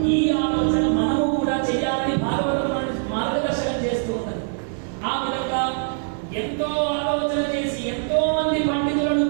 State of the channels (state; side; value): silent; left; 63 dB below the other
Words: ఈ ఆలోచన మనము కూడా చేయాలని భాగవతం మార్గదర్శనం చేస్తూ ఉన్నది. ఆ విధంగా ఎంతో ఆలోచన చేసి ఎంతో మంది పండితులను